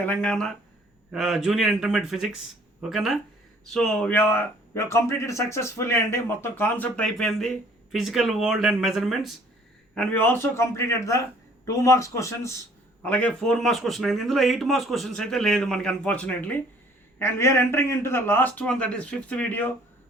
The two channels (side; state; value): both; normal; correlation 0.57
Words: junior intermediate physics. Okay na? So we have completed successfully Andy, మొత్తం కాన్సెప్ట్ అయిపోయింది physical world and measurements, and we also completed the 2 marks questions అలాగే 4 marks question అయింది. ఇందులో 8 marks questions అయితే లేదు మనకి unfortunately, and we are entering into the last one, that is fifth video,